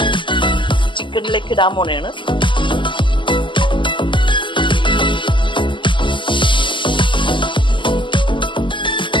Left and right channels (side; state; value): right; late; 0.24 ms